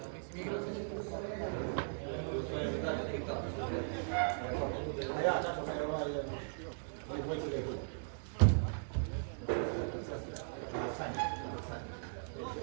A ja, tako me ovaj dvojci rekao.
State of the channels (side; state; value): left; silent; digital silence